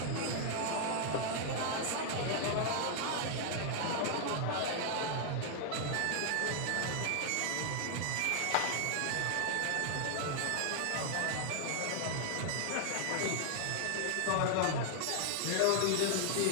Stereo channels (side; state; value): both; different; correlation 0.00